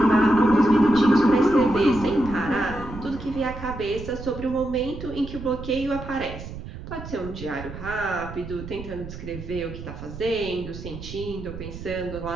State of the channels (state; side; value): noise; right; rumble, 11 dB below the sound